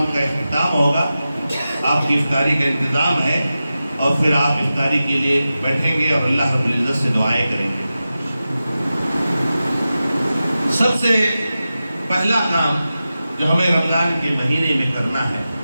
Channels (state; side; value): inverted; both; correlation -0.93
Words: کا اختتام ہوگا۔ آپ کی افطاری کا انتظام ہے، اور پھر آپ افطاری کے لیے بیٹھیں گے اور اللہ رب العزت سے دعائیں کریں گے۔ سب سے پہلا کام جو ہمیں رمضان کے مہینے میں کرنا ہے